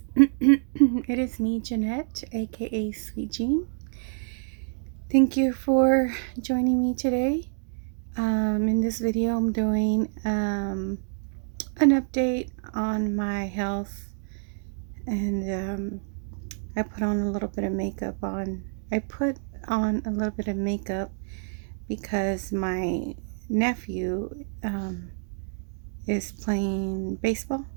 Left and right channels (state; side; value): silent; left; 60 dB below the other